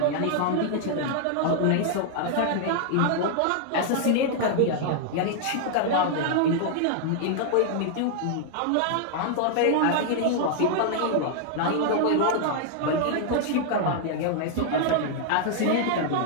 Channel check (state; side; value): different; both; correlation -0.01